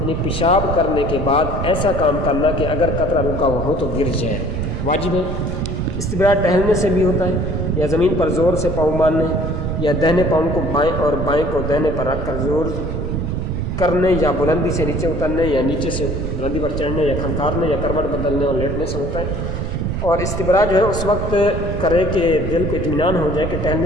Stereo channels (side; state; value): right; noise; rumble, 4 dB below the sound